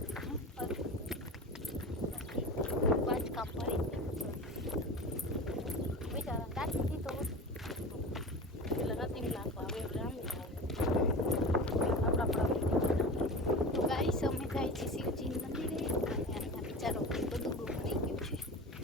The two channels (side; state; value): both; normal; correlation 0.31